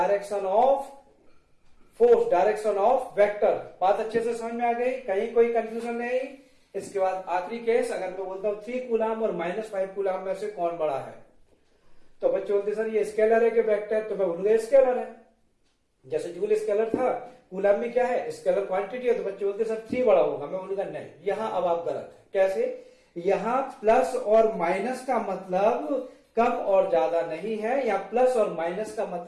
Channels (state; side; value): identical; both; correlation 1.00